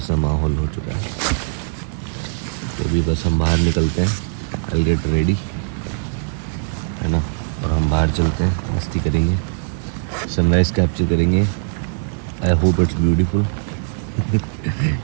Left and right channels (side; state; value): left; silent; digital silence